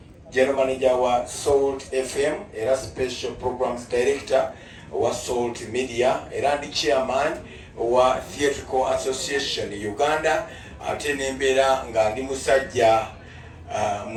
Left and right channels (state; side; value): identical; both; correlation 1.00